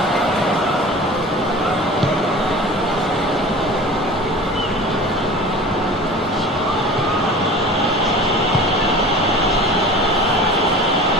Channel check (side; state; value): both; normal; correlation 0.38